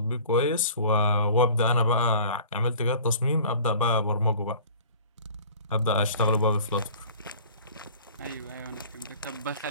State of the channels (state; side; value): inverted; both; correlation -0.46